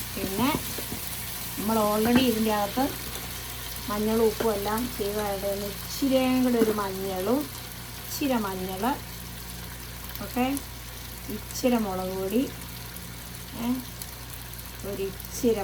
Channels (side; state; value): both; identical; correlation 1.00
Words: പിന്നെ നമ്മൾ ഓൾറെഡി ഇതിൻ്റെ അകത്ത് മഞ്ഞളും ഉപ്പും എല്ലാം ചെയ്തതായിട്ട് ഇച്ചിരിയും കൂടെ ഒരു മഞ്ഞളും ഇച്ചിരി മഞ്ഞൾ, ഓക്കെ, ഇച്ചിരി മുളക് പൊടി, ഒരു